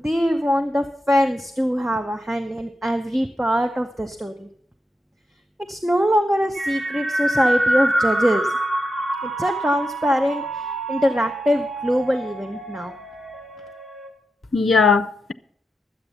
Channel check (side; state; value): both; normal; correlation 0.88